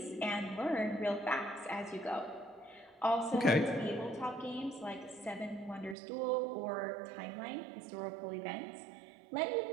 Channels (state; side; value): drops out; left; at 6.0 s